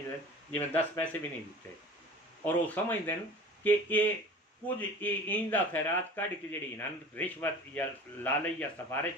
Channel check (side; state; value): both; normal; correlation 0.41